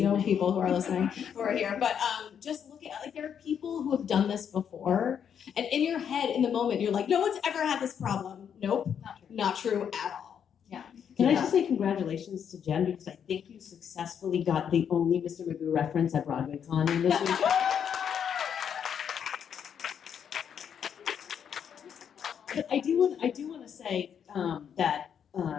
people who are listening, who are here. But just look at, like, there are people who have done this before, and in your head, in the moment, you're like, no one's ever had this problem. Nope, not true at all. Yeah. Can I just say congratulations to Jen, because I think you successfully got the only Mr. Magoo reference at BroadwayCon in this week. But I do want to say that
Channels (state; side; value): quieter; right; 8.1 dB